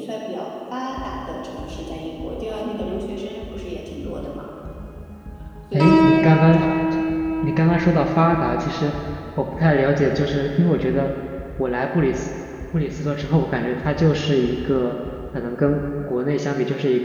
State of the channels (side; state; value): both; identical; correlation 1.00